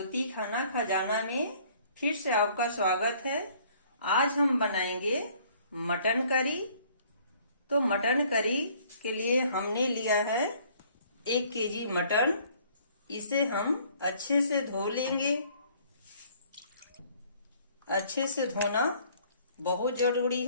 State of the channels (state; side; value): inverted; both; correlation -0.58